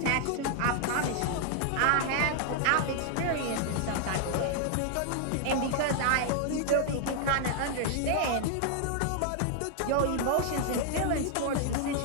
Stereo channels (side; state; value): both; different; correlation 0.00